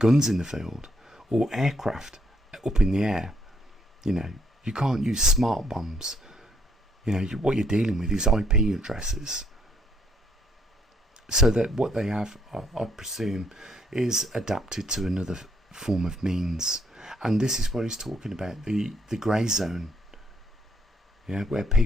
in the field or aircraft up in the air. You can't use smart bombs. What you're dealing with is IP addresses. So that what they have, I presume, is adapted to another form of means. And this is what he's talking about, the grey zone. Where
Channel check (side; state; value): both; normal; correlation 0.71